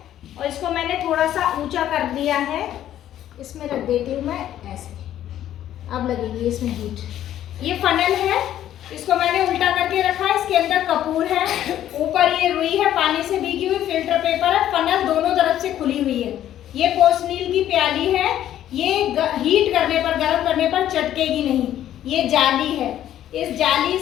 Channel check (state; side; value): quieter; right; 11.8 dB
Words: और इसको मैंने थोड़ा सा ऊंचा कर दिया है। इसमें रख देती हूँ मैं ऐसे, अब लगेगी इसमें हीट। ये फनल है, इसको मैंने उल्टा करके रखा है। इसके अंदर कपूर है, ऊपर ये रुई है पानी से भीगी हुई, फिल्टर पेपर है, फनल दोनों तरफ से खुली हुई है। ये पोर्सनील की प्याली है, ये हीट करने पर, गर्म करने पर चटकेगी नहीं। ये जाली है, इस जाली